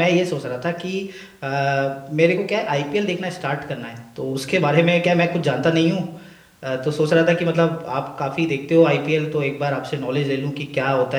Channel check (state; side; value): identical; both; correlation 1.00